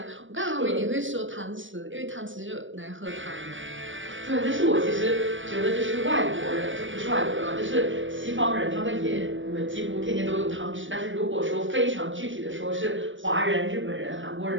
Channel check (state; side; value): late; left; 0.56 ms